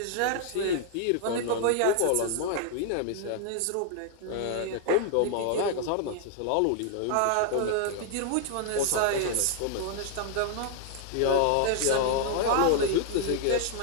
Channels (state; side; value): different; both; correlation 0.00